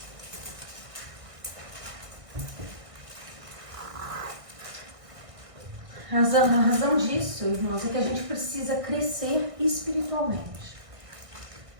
A razão disso, irmãos, é que a gente precisa crescer espiritualmente.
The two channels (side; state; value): left; late; 1.6 ms